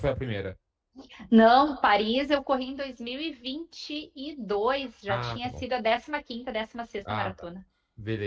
a primeira? Não, Paris eu corri em 2022, já tinha Tá bom. sido a 15ª, 16ª maratona. Tá.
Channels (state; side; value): identical; both; correlation 1.00